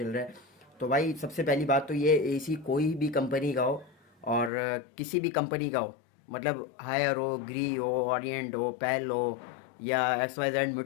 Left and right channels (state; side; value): drops out; right; at 4.5 s